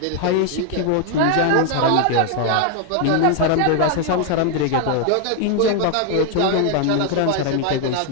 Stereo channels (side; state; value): both; different; correlation 0.00